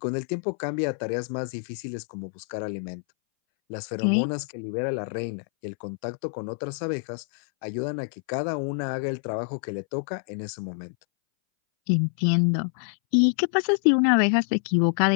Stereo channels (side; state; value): right; silent; 61 dB below the other